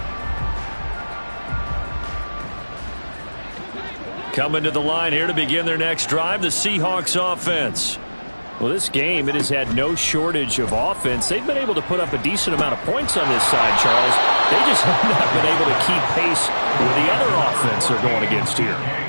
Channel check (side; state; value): both; inverted; correlation -1.00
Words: Coming to the line here to begin their next drive, the Seahawks offense. Well, this game, it has had no shortage of offense. They've been able to put up a decent amount of points on this side, Charles. They just have not been able to keep pace with the other offense they're going against here.